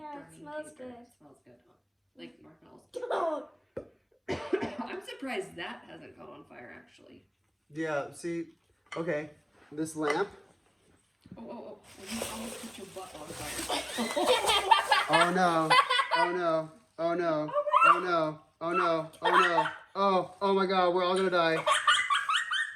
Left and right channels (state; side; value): identical; both; correlation 1.00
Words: it burning smells paper. good. It smells good, huh? Like marshmallows. Oh, I'm surprised that hasn't caught on fire actually. Yeah, see, okay, this lamp. Oh! You almost put your butt on fire. Oh no, oh no, oh no, oh no, oh no, oh no, oh my god, we're all gonna die.